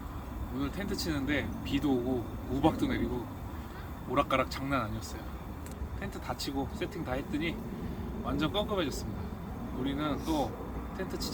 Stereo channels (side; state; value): both; identical; correlation 1.00